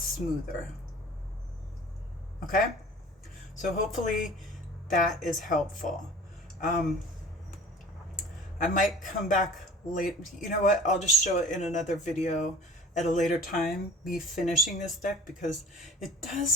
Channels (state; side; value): normal; both; correlation 0.44